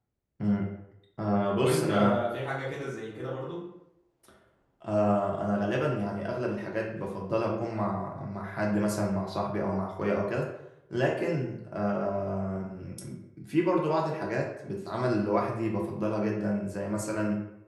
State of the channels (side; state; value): both; identical; correlation 1.00